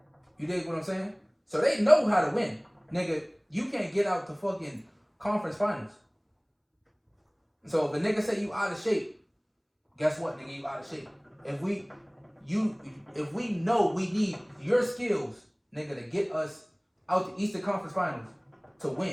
You dig what I'm saying? So they know how to win. Nigga, you can't get out the fucking conference finals. So if a nigga say you out of shape, guess what, nigga, you out of shape. If we know we need your skills, nigga, to get us out the Eastern Conference Finals to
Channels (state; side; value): identical; both; correlation 1.00